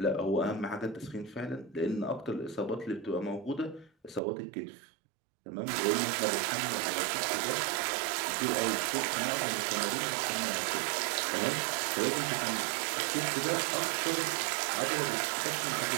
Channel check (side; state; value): left; drops out; at 4.2 s